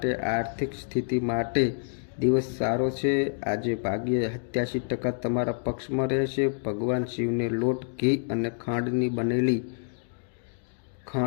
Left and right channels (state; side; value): silent; right; digital silence